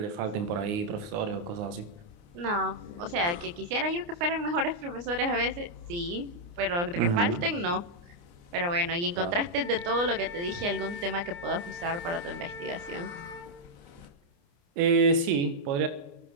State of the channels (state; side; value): late; left; 29 ms